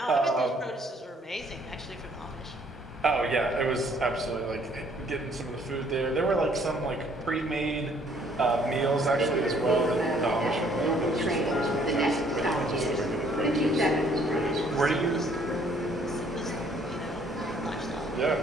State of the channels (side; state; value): both; normal; correlation 0.62